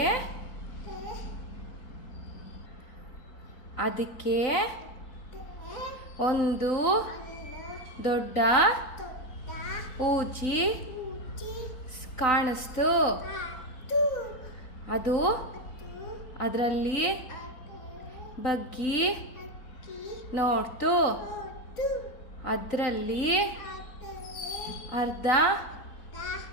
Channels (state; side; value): late; right; 3.9 ms